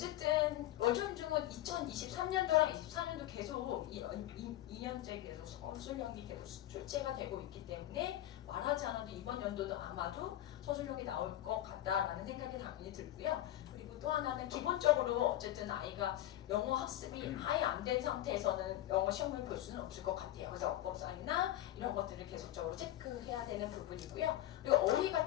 월전 중은 2023년도랑 24년도 계속 2년째 계속 서술형이 계속 출제가 되고 있기 때문에 말하지 않아도 이번 연도도 아마도 서술형이 나올 것 같다라는 생각이 당연히 들고요. 그리고 또 하나는 기본적으로 어쨌든 아이가 영어 학습이 아예 안 된 상태에서는 영어 시험을 볼 수는 없을 것 같아요. 그래서 어법상이나 이런 것들을 계속적으로 체크해야 되는 부분이고요. 그리고 어휘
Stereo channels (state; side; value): quieter; right; 13.8 dB